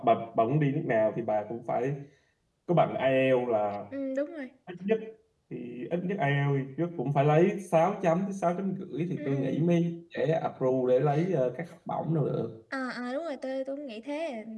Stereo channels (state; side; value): identical; both; correlation 1.00